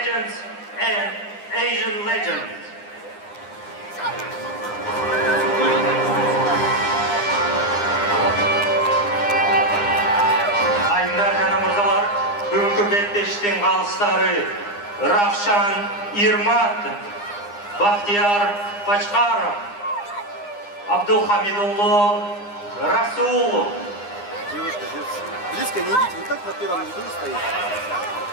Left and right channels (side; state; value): right; late; 9.8 ms